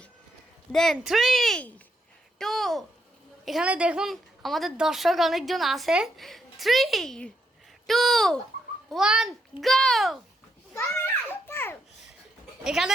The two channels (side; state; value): both; normal; correlation 0.79